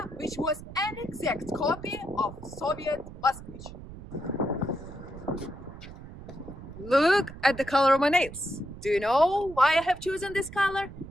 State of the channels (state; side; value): noise; right; rumble, 14 dB below the sound